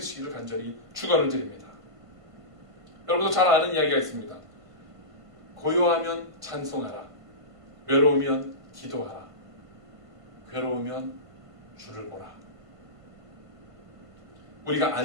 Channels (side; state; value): left; late; 1.5 ms